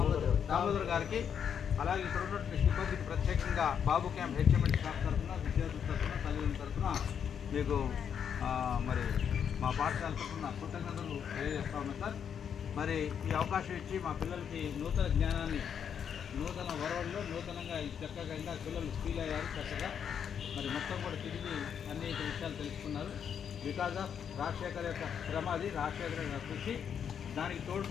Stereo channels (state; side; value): quieter; right; 7.9 dB